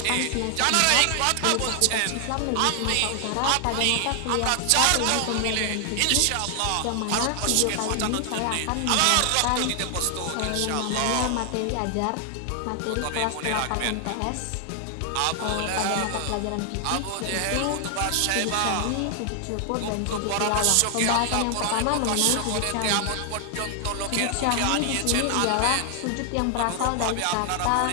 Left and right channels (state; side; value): different; both; correlation 0.00